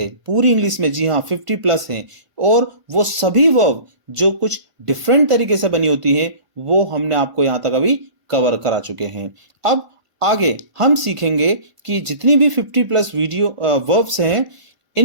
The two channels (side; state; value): left; late; 1.0 ms